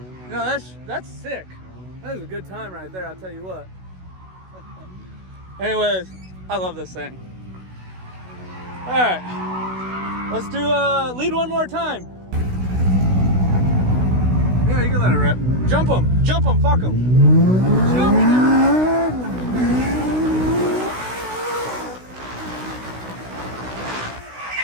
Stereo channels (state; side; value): late; left; 16 ms